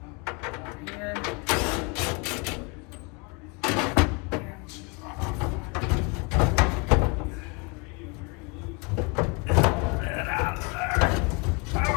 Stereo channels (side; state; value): right; quieter; 29.8 dB